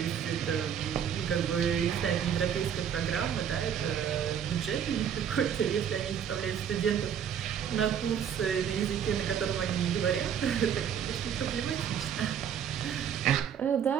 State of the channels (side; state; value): left; quieter; 8.5 dB